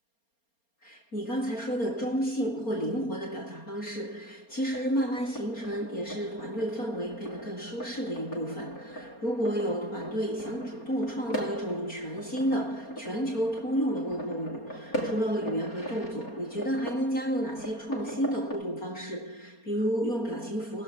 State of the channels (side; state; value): right; late; 4.3 ms